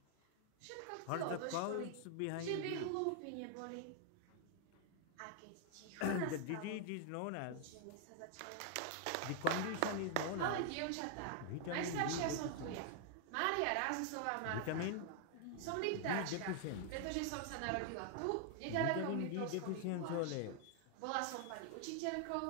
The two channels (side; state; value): both; different; correlation 0.00